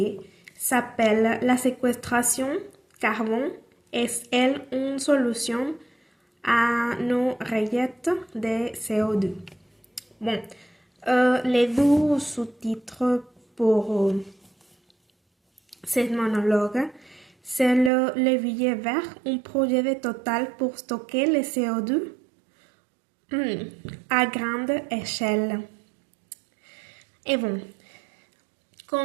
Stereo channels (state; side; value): drops out; left; at 17.9 s